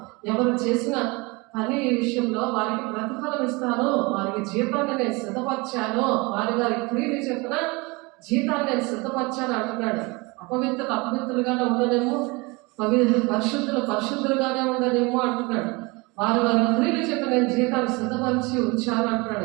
ఎవరు చేసిన పని విషయంలో వారికి ప్రతిఫలం ఇస్తాను, వారికి జీతాన్ని నేను సిద్ధపరిచాను, వారి క్రియలు చెప్పిన జీతాన్ని నేను సిద్ధపరిచాను అంటున్నాడు. అపవిత్రులు అపవిత్రులుగానే ఉండనేమో, పరిశుద్ధులుగానే ఉండనేమో అంటున్నాడు. వారి క్రియలు చెప్పి నేను జీతాన్ని సిద్ధపరిచి ఉంచాను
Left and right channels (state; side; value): quieter; left; 26.0 dB